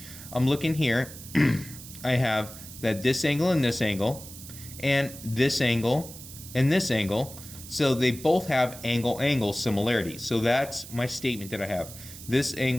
I'm looking here, I have that this angle and this angle, and this angle and this angle. So they both have angle-angle similarity. So that's my statement that I have. This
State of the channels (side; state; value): right; noise; hiss, 14 dB below the sound